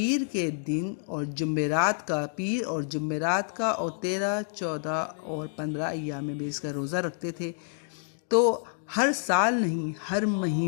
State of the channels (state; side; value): silent; right; digital silence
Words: کے دن اور جمعرات کا اور 13، 14 اور 15 ایام بیس کا روزہ رکھتے تھے۔ تو ہر سال نہیں، ہر